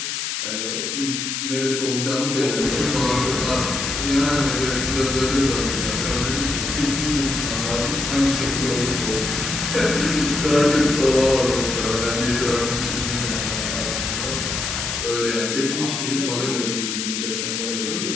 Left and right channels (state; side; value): noise; left; hiss, 3 dB below the sound